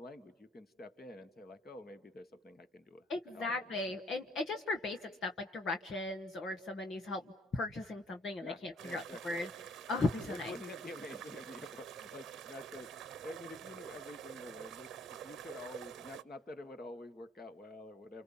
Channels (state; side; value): normal; both; correlation 0.62